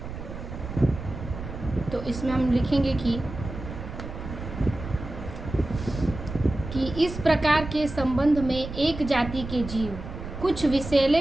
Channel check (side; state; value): right; noise; rumble, 9 dB below the sound